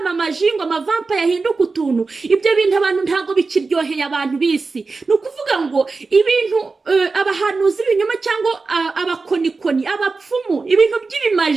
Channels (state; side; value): quieter; left; 4.1 dB